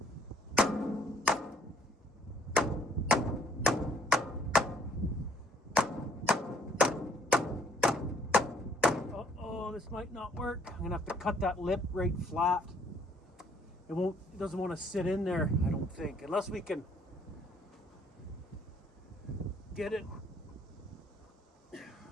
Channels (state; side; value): normal; both; correlation 0.62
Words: Uh-oh, this might not work. I'm gonna have to cut that lip right flat. It doesn't want to sit in there, I don't think, unless we can get it.